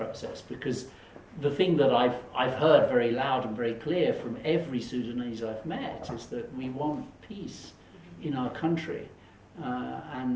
Because the thing that I've heard very loud and very clear from every Sudanese I've met is that we want peace in our country.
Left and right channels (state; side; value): identical; both; correlation 1.00